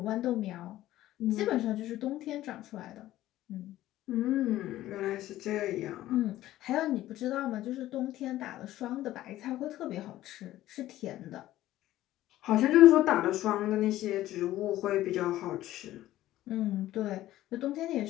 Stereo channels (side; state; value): right; quieter; 14.6 dB